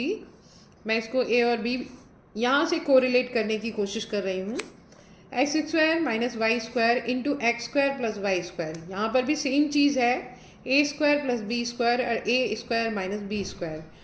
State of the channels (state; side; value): identical; both; correlation 1.00